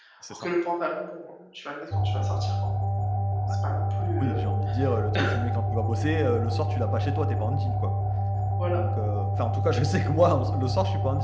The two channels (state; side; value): identical; both; correlation 1.00